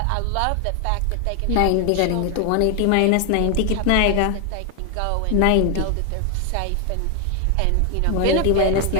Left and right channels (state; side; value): different; both; correlation 0.00